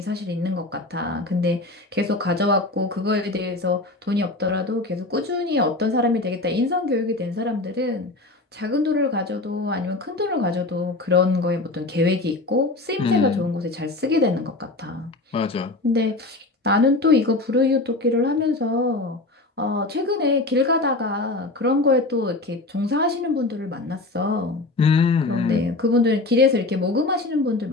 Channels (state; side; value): quieter; right; 3.0 dB